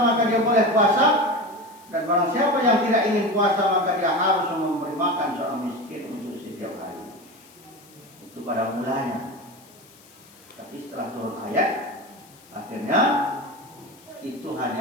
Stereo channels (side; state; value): left; noise; hiss, 25 dB below the sound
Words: dia boleh puasa, dan barang siapa yang tidak ingin puasa maka dia harus memberi makan seorang miskin untuk setiap hari. Itu pada mulanya. Tapi setelah turun ayat, akhirnya itu